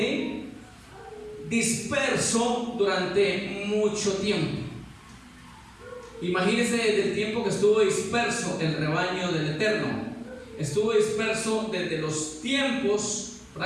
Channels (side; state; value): both; identical; correlation 1.00